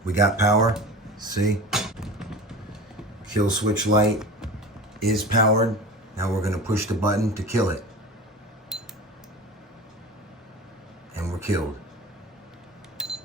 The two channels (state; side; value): normal; both; correlation 0.34